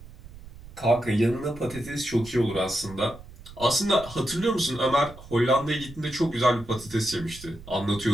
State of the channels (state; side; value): noise; right; rumble, 17 dB below the sound